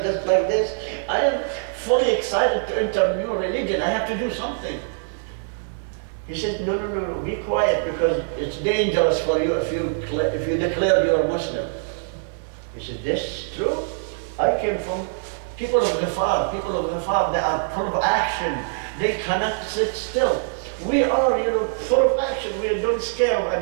just like this. I am fully excited to enter a new religion. I have to do something. He said, no, be quiet because it's dangerous for you if you declare you're a Muslim. He said, this is true. I came from people of Ghifar. People of Ghifar, they are full of action. They cannot sit still. We are, full of action. We don't scare of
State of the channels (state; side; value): silent; left; digital silence